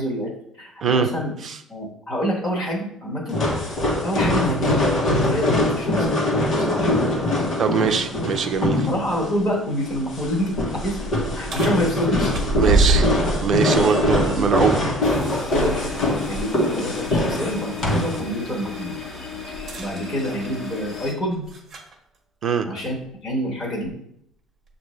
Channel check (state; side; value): normal; both; correlation 0.45